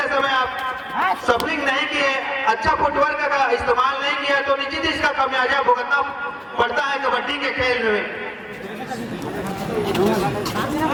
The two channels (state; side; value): identical; both; correlation 1.00